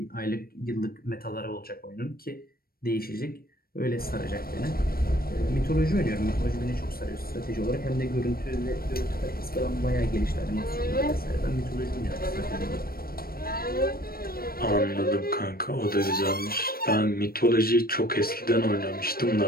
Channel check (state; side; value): late; right; 0.44 ms